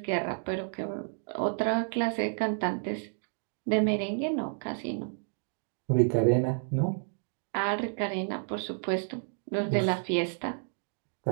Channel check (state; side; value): silent; left; digital silence